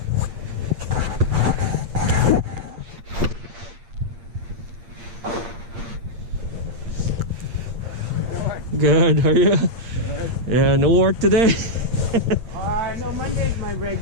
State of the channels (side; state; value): left; late; 8.7 ms